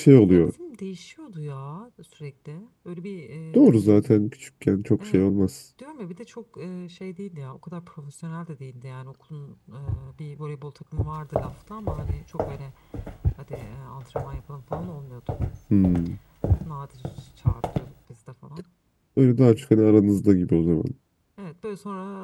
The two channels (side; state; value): both; identical; correlation 1.00